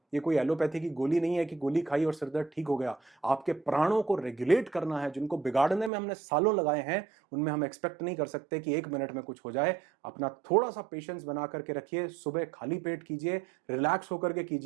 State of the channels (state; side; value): drops out; left; at 5.9 s